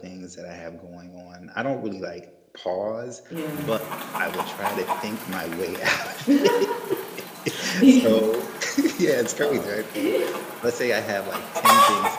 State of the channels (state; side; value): identical; both; correlation 1.00